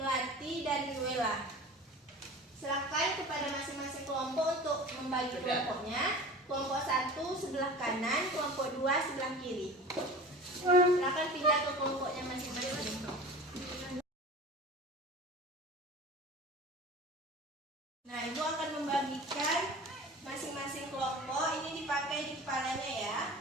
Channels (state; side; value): normal; both; correlation 0.37